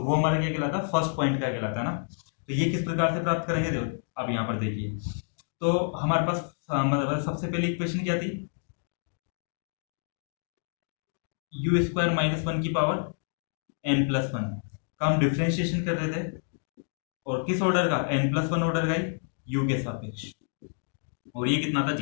वो हमारा क्या कहलाता है, फर्स्ट पॉइंट का कहलाता है ना। तो ये किस प्रकार से प्राप्त करेंगे, देखो अब यहाँ पर देखिए, तो हमारे पास मतलब सबसे पहली इक्वेशन क्या थी, u² - 1 की पावर n प्लस 1 का हम डिफ्रेंशिएशन कर रहे थे, और किस ऑर्डर का, n प्लस 1 ऑर्डर का ही u के सापेक्ष, और ये कितना था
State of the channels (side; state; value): right; silent; digital silence